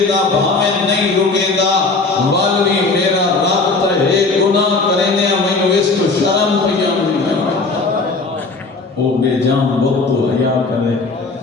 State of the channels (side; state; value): right; quieter; 3.8 dB